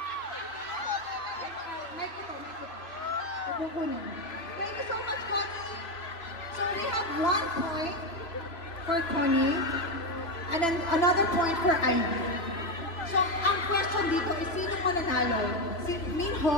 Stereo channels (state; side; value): late; right; 3.1 ms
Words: May kuto. Kukunin. Thank you so much, Connie. So we have 1 point for Connie and then another point for Ivy. So ang question dito is sino mananalo? Si